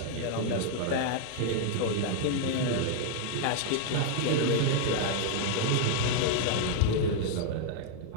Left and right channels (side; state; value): both; different; correlation 0.00